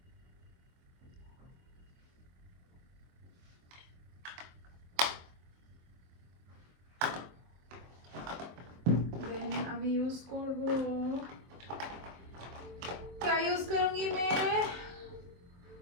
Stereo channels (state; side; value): late; left; 23 ms